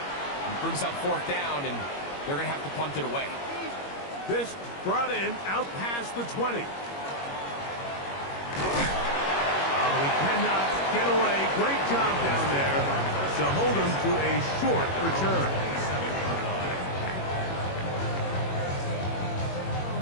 brings up fourth down, and they're going to have to punt it away. This brought him out past the 20. He cannot get away. Great job down there to hold him to a short return.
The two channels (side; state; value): right; late; 21 ms